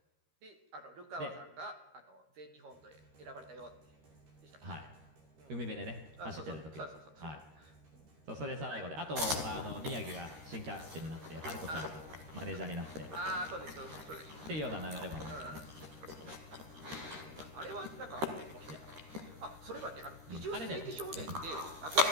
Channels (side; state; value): left; late; 13 ms